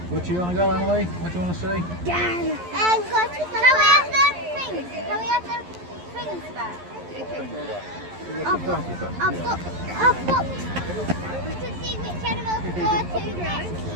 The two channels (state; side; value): late; left; 11 ms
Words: Where do you want to go, Emily? What do you want to see? Can we have the things? Can we have the things back? I've got to see which animals to go to next.